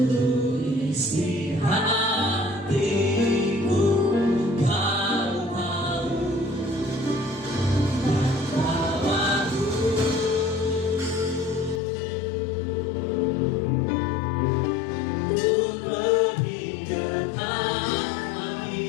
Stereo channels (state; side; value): drops out; right; at 11.8 s